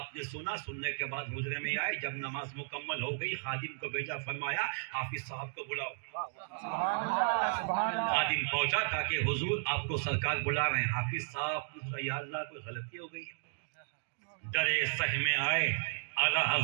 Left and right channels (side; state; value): left; silent; digital silence